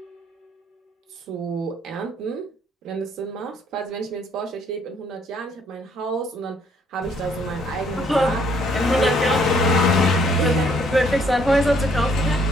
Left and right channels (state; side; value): normal; both; correlation 0.66